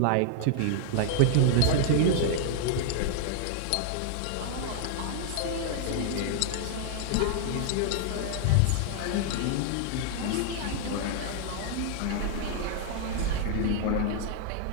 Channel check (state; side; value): different; both; correlation 0.00